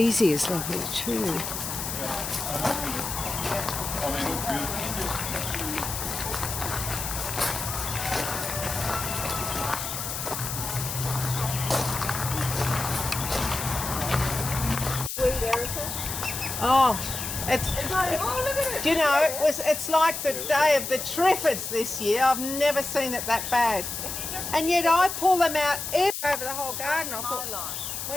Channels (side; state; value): left; noise; hiss, 5 dB below the sound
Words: is lovely too. Oh, it's. Do you know, it's like the day of the Triffids this year. I've never seen it that bad. And yet I pull them out over the whole garden. I thought,